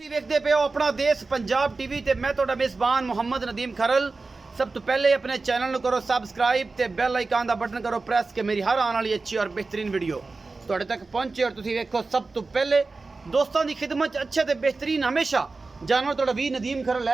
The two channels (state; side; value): quieter; left; 3.8 dB